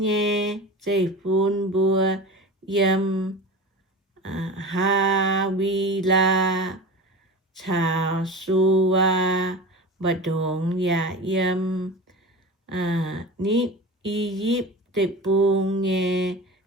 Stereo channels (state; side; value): normal; both; correlation 0.31